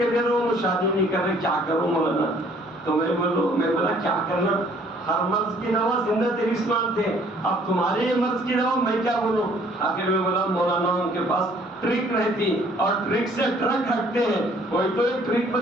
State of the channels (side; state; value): both; normal; correlation 0.59